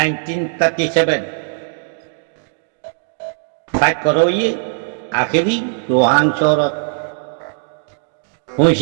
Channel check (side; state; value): left; silent; digital silence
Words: ফাইট করো ইয়ে আখেরি রোহাংসর